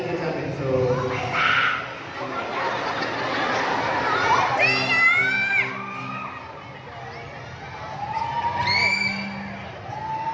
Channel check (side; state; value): both; identical; correlation 1.00